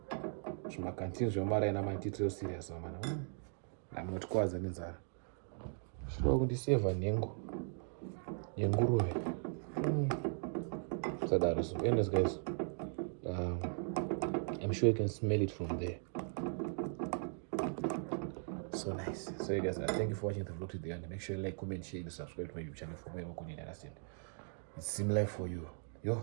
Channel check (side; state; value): left; silent; 52 dB below the other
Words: Zvima canteen zvomara ina mantitiro serious man. I'm not kwaza nenzara. Shinoda kundiseva nhengo. Yenguruve. Sadaro so. Anyways guys. I'm sure you can smell it from there. So nice. So you guys, thank you for watching the vlog to the end. Make sure you like, comment, share, and subscribe to my YouTube channel for more. It's similar for you.